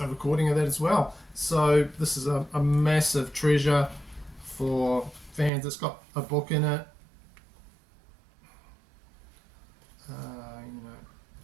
recording of that as well. So this is a massive treasure for fans. It's got a book in it,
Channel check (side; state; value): left; drops out; at 5.5 s